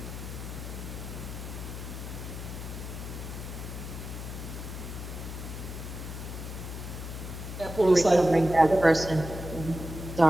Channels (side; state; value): left; noise; hum, 8 dB below the sound